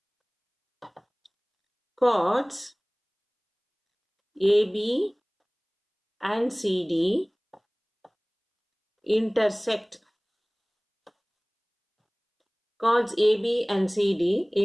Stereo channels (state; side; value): identical; both; correlation 1.00